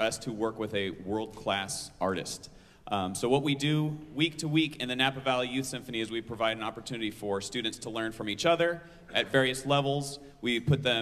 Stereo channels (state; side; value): identical; both; correlation 1.00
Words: to work with a world-class artist. So what we do week to week in the Napa Valley Youth Symphony is we provide an opportunity for students to learn from each other at various levels. We put